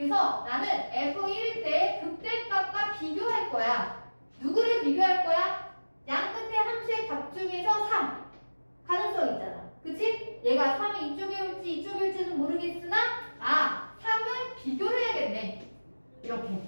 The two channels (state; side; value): inverted; both; correlation -1.00